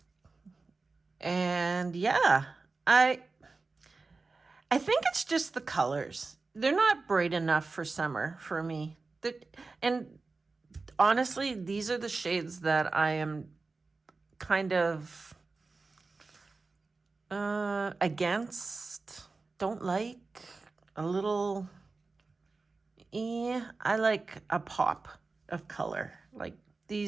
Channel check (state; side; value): quieter; left; 3.9 dB